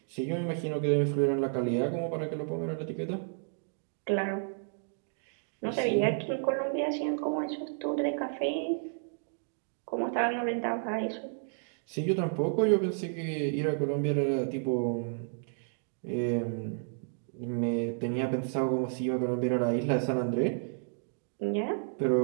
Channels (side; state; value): left; silent; digital silence